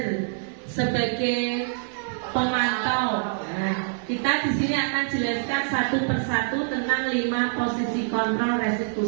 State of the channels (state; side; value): silent; left; 61 dB below the other